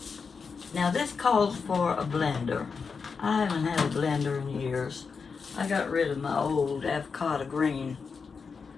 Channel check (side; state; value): right; quieter; 5.3 dB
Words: Now this calls for a blender. I haven't had a blender in years. I got rid of my old avocado green